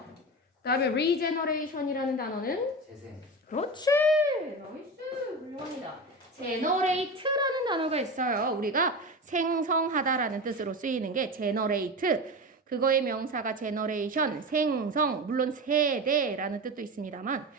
그다음에 regeneration이라는 단어는 재생. 그렇지, 나이스, 훌륭합니다. generate라는 단어가 있어요. 우리가 생성하다라는 뜻으로 쓰이는 게 generate. 그거의 명사가 generation, 생성, 물론 세대라는 뜻도 있습니다만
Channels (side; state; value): both; normal; correlation 0.25